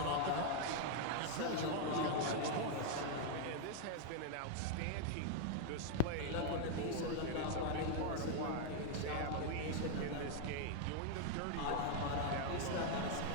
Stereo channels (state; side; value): different; both; correlation 0.00